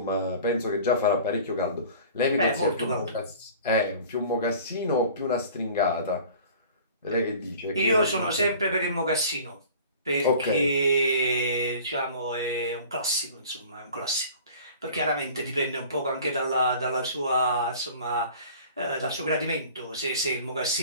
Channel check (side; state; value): both; inverted; correlation -0.45